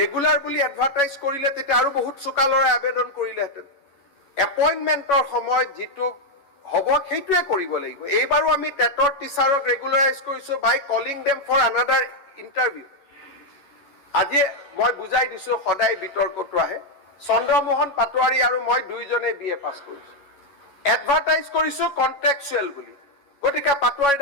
বুলি এডভাৰটাইজ কৰিলে তেতিয়া আৰু বহুত চোকালৰে আবেদন কৰিলেহেঁতেন। এপইণ্টমেণ্টৰ সময়ত যিটো হ'ব সেইটোৱে কৰিব লাগিব। এইবাৰো আমি টেটৰ টিচাৰক ৰেগুলাৰাইজ কৰিছো by calling them for another interview. আজি মই বুজাই দিছো, সদায় বিতৰ্কটো আহে। চন্দ্ৰমোহন পাটোৱাৰী আৰু মই দুইজনে BA পাছ কৰিছো, এডভাৰটাইজ কৰিছো কন্ট্ৰেকচুৱেল বুলি। গতিকে পাটোৱাৰী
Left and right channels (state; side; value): late; right; 11 ms